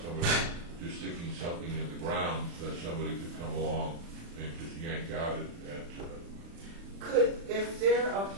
just sticking something in the ground that somebody could come along and just yank out at If they're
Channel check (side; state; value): left; late; 36 ms